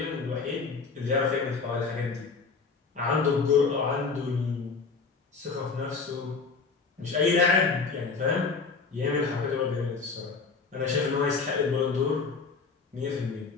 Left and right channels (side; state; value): right; quieter; 4.8 dB